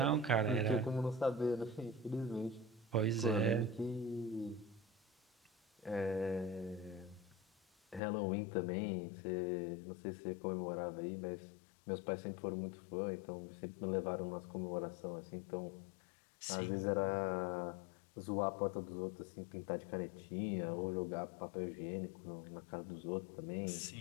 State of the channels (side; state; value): right; drops out; at 8.0 s